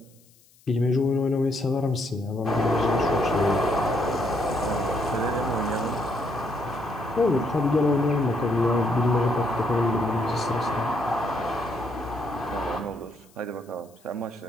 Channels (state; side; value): noise; left; hiss, 30 dB below the sound